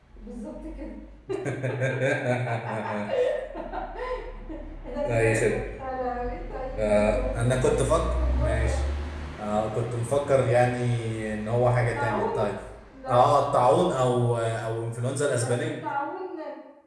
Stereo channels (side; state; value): both; identical; correlation 1.00